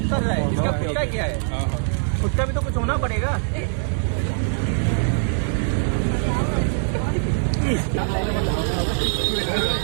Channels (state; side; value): silent; left; 64 dB below the other